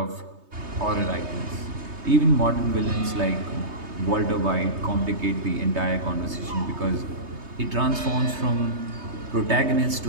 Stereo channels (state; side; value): late; left; 3.2 ms